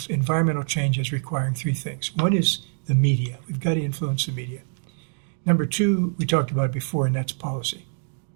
environmental change as requiring three things. One is the media. We've got to influence the media. Number two, we talked about it before, and that's policy.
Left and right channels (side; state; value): left; silent; digital silence